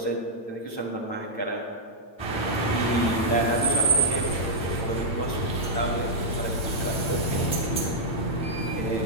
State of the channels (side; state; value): right; late; 8.9 ms